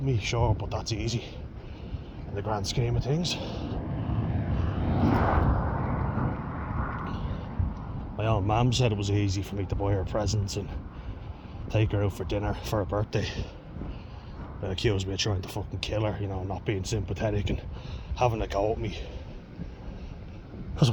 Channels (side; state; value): both; identical; correlation 1.00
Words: sure, but that's easy in the grand scheme of things. My own mum said it was easy for me to buy her presents and take her out for dinner for her birthday. They accused me of trying to fucking kill her, you know, not being sympathetic and having a go at me. Because I